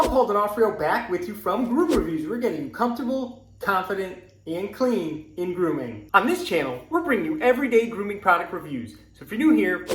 Paul D'Onofrio back with you from Groom Reviews. We're getting you comfortable, confident, and clean in grooming. On this channel, we're bringing you everyday grooming product reviews. So if you're new here,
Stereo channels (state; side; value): identical; both; correlation 1.00